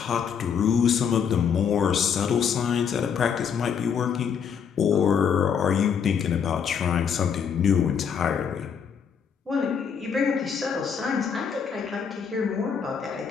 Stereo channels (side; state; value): right; quieter; 7.2 dB